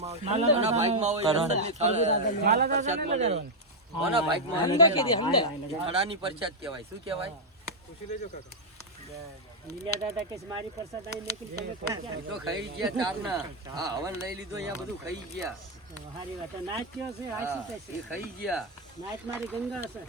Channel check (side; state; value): both; normal; correlation -0.02